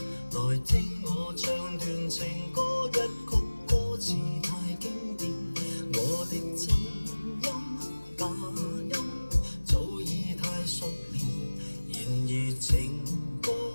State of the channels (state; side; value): inverted; both; correlation -1.00